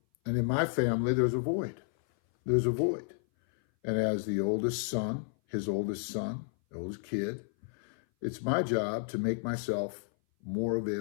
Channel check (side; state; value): right; silent; 57 dB below the other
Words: And in my family, there's a void. There's a void. And as the oldest son, his oldest son, the oldest kid, It's my job to make myself more